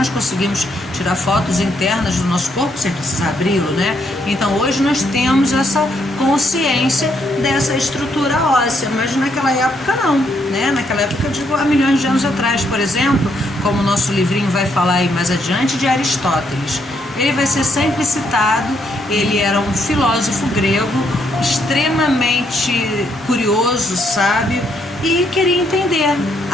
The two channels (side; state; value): both; normal; correlation 0.74